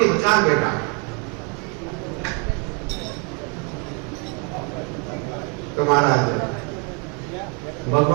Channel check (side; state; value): left; quieter; 34.3 dB